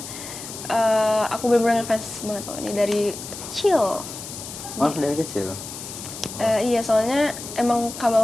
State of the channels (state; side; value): noise; left; hiss, 10 dB below the sound